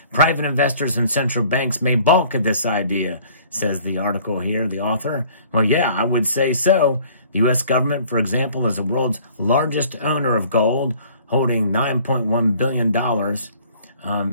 Private investors and central banks may balk at this idea, says the article here, the author. Well, yeah, I would say so. The U.S. government, for example, is the world's largest owner of gold, holding $9.1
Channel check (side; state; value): both; inverted; correlation -0.54